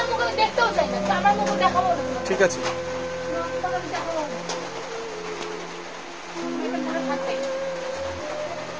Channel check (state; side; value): identical; both; correlation 1.00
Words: মুখ আমি দেখতেও চাই না তো আমার মুখ দেখাবো না। ঠিক আছে